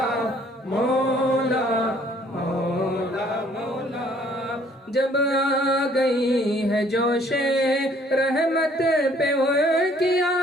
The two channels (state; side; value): normal; both; correlation 0.60